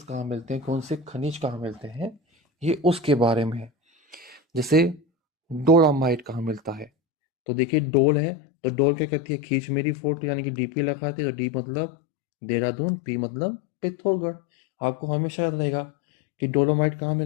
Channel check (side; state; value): right; drops out; at 6.9 s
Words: कहाँ मिलते हैं, कौन से खनिज कहाँ मिलते हैं, ये उसके बारे में है। जैसे डोलामाइट कहाँ मिलता है? तो देखिए डोल है, तो डोल क्या कहती है? खींच मेरी फोटो, यानी कि डीपी लगाते हैं। तो डी मतलब देहरादून, पी मतलब पिथौरगढ़। आपको हमेशा याद रहेगा कि डोलोमाइट कहाँ